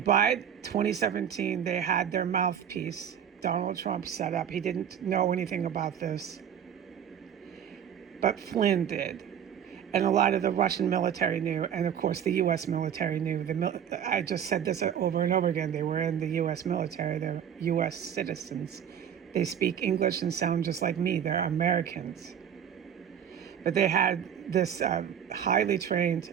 2017, they had their mouthpiece, Donald Trump, set up. He didn't know anything about this, but Flynn did. And a lot of the Russian military knew, and of course the U.S. military knew. I just said this over and over again. They were in the U.S. military. They're U.S. citizens. They speak English and sound just like me. They're Americans. But they had this highly trained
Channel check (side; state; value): left; quieter; 8.8 dB